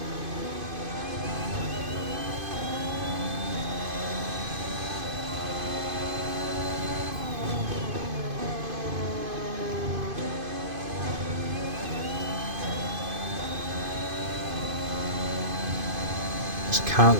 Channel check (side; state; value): left; late; 2.5 ms